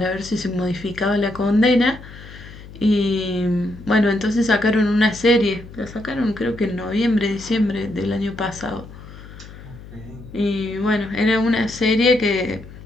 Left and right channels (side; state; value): left; noise; hum, 17 dB below the sound